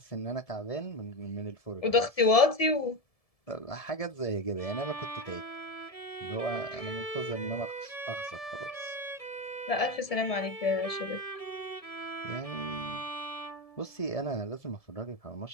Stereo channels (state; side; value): late; right; 1.7 ms